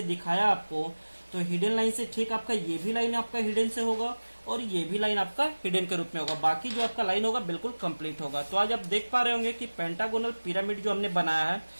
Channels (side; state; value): both; inverted; correlation -1.00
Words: दिखाया आपको, तो हिडन लाइन से ठीक आपका ये भी लाइन आपका हिडन से होगा और ये भी लाइन आपका हिडन के रूप में होगा। बाकी जो आपका लाइन होगा बिल्कुल कंप्लीट होगा। तो आज आप देख पा रहे होंगे कि पेंटागोनल पिरामिड जो हमने बनाया है,